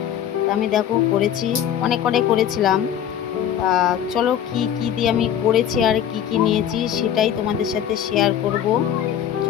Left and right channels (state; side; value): quieter; right; 9.9 dB